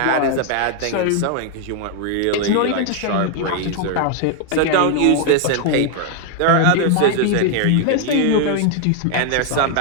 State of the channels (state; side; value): different; both; correlation 0.00